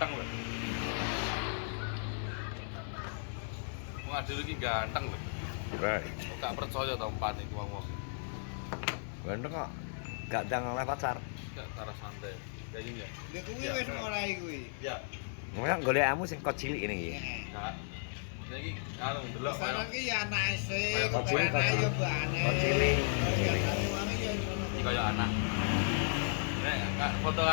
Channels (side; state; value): right; silent; digital silence